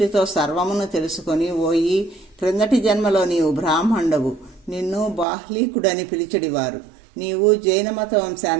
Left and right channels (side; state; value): left; drops out; at 5.2 s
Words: సర్వమును తెలుసుకొని, ఓయి, క్రిందటి జన్మలో నీవు బ్రాహ్మణుడవు, నిన్ను బాహ్లీకుడని పిలిచడివారు. నీవు జైన మత